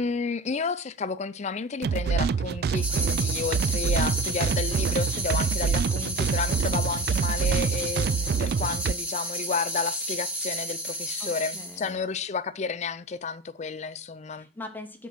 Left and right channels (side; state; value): both; normal; correlation 0.32